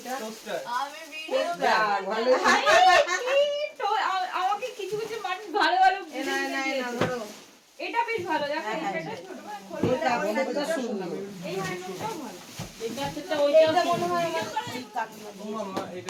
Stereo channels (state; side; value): identical; both; correlation 1.00